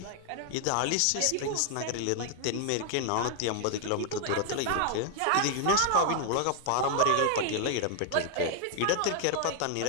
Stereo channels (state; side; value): different; both; correlation 0.00